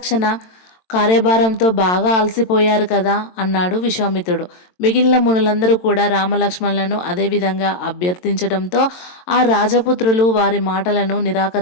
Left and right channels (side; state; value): right; late; 22 ms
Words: కార్యభారంతో బాగా అలసిపోయారు కదా అన్నాడు విశ్వామిత్రుడు. మిగిలిన మునులందరూ కూడా రామలక్ష్మణులను అదేవిధంగా అభ్యర్థించడంతో ఆ రాజపుత్రులు వారి మాటలను